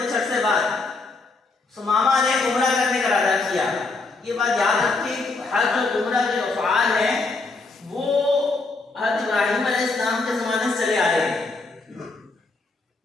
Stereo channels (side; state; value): right; quieter; 3.7 dB